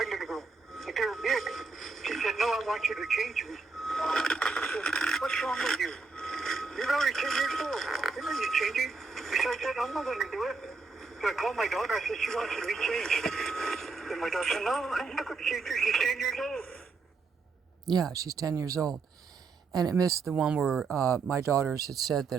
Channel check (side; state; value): left; quieter; 4.4 dB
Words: little girl. But they were big." She said, "No, I want you to change me." I said, "What's wrong with you?" change it. So I said, I'm not going to do it. So I called my daughter. I said, she wants to be changed. And my daughter said, no, I'm not going to change her. She's 10 years old. Yeah, she's 10 years old. And it missed the one where my daughters had said